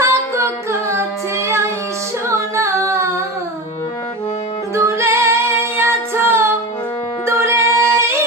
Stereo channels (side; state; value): both; normal; correlation 0.27